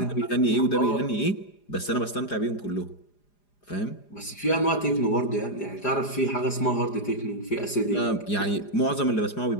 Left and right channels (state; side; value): late; right; 4.9 ms